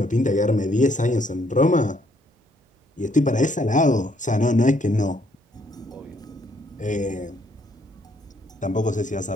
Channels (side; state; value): both; normal; correlation 0.69